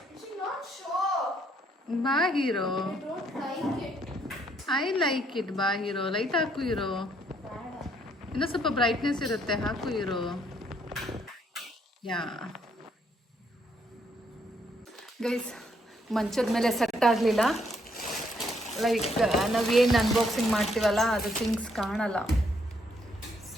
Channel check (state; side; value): normal; both; correlation 0.70